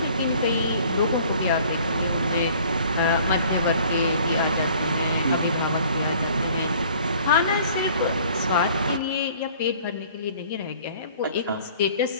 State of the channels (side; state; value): both; inverted; correlation -0.53